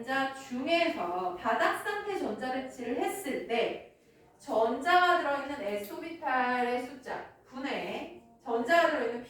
중에서 바닥 상태 전자배치를 했을 때 전자가 들어있는 S오비탈의 숫자 분의 전자가 들어있는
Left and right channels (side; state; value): both; identical; correlation 1.00